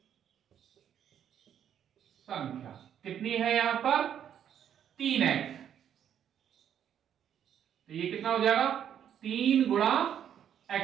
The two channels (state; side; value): quieter; left; 9.4 dB